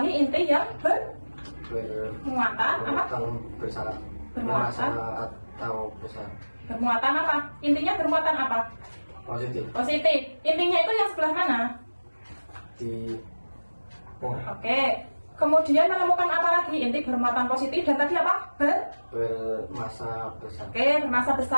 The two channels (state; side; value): inverted; both; correlation -1.00